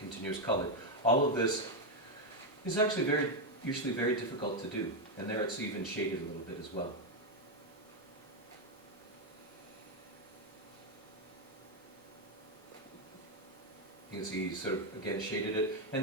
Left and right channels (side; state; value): both; normal; correlation 0.03